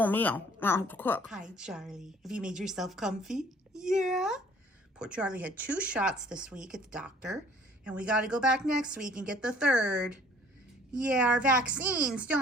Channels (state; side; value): normal; both; correlation 0.55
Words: meal. I don't have to cook. Hi, Charlie. Have you made yourself comfy? Yeah. Poor Charlie had 2 shots this week at the doctor, and we got to go back next week and get the 3rd. Yeah, our vaccines,